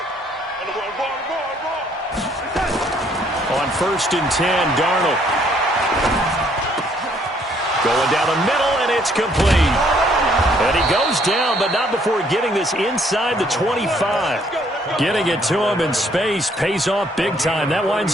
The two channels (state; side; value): normal; both; correlation 0.65